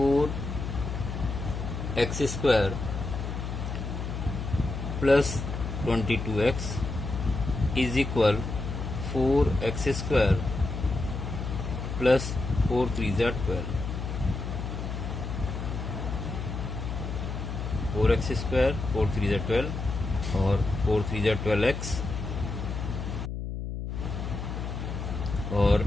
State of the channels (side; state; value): left; noise; hum, 5 dB below the sound